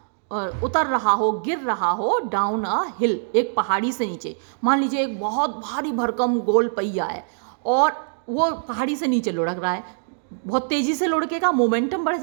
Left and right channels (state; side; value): silent; left; digital silence